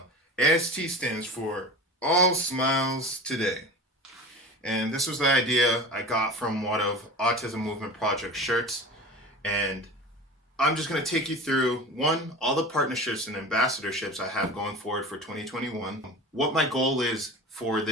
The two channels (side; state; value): both; normal; correlation 0.34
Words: AST stands for All Smiles Today. And this was the idea I got from one of Autism Movement Project shirts. And I'm just going to take you through, all the partnerships and ambassadorships I have going forward for 2021, what my goal is for